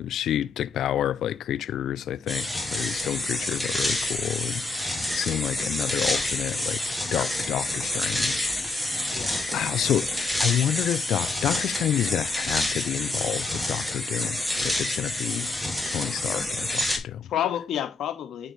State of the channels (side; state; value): right; quieter; 4.5 dB